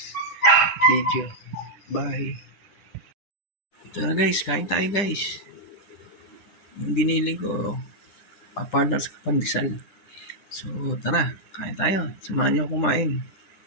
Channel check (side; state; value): right; late; 9.9 ms